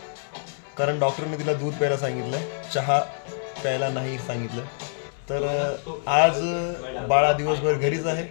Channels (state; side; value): silent; right; 61 dB below the other